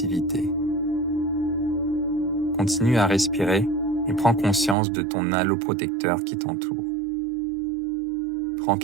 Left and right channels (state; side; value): drops out; left; at 4.8 s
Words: Continue à respirer et prends conscience de ton halo protecteur qui t'entoure. Prends